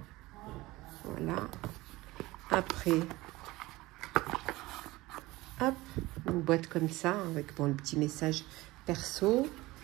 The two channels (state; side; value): quieter; left; 19.6 dB